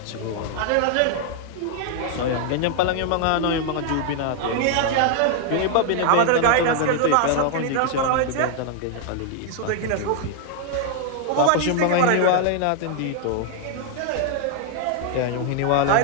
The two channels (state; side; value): different; both; correlation 0.00